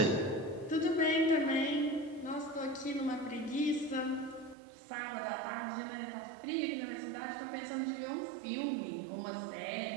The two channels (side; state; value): left; drops out; at 4.5 s